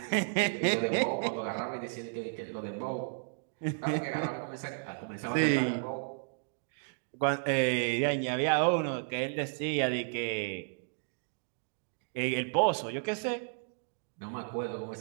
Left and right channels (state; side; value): silent; left; digital silence